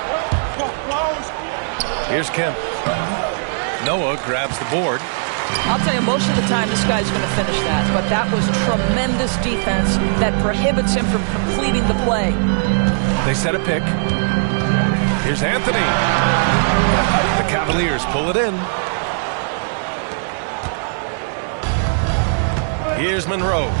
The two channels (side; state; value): left; silent; digital silence